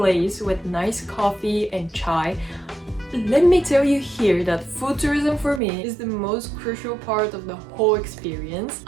with nice coffee and chai. Let me tell you here that food tourism for me is the most crucial part of the whole experience.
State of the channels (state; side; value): drops out; left; at 5.6 s